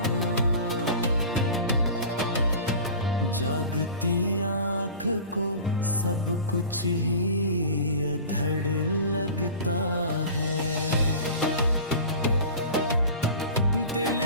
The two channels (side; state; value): both; inverted; correlation -0.37